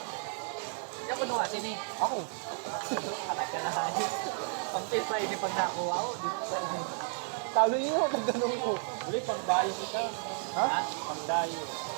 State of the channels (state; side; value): silent; left; 56 dB below the other